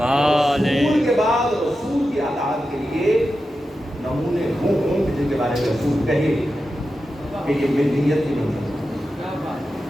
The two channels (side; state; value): both; normal; correlation 0.91